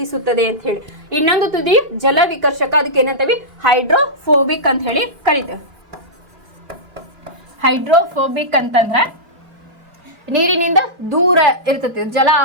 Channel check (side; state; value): left; late; 3.0 ms